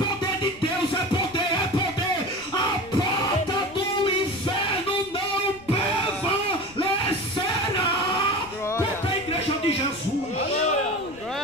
de Deus, é poder, é poder. A porta do inferno não prevalecerá contra a igreja de Jesus.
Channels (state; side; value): noise; left; rumble, 23 dB below the sound